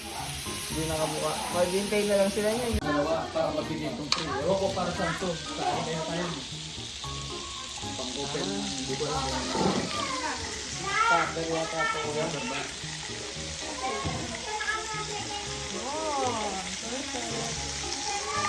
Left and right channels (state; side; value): identical; both; correlation 1.00